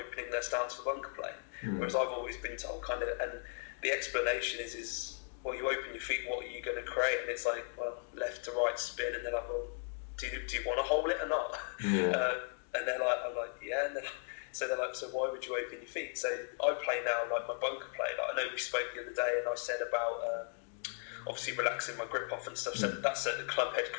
their stance for bunker play. Whereas I've always been told kind of, and the explanation is well, you open your feet, what are you going to create? And it's like, well, left to right spin, and they're like, well, do you want to hold it or not? And they're like, I'm like, yeah. And so they're like, so why would you open your feet? So I play now like my bunker play. Like I know we spoke the other day, and I said about obviously relaxing my grip off and stuff. So that's so the club head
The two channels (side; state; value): right; silent; 53 dB below the other